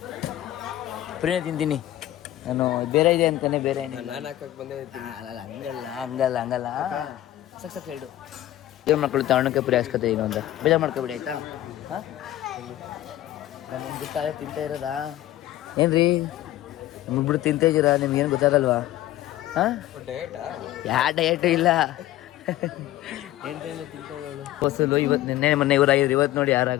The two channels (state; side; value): quieter; right; 14.4 dB